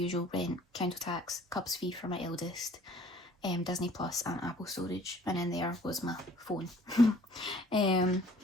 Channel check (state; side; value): normal; both; correlation 0.54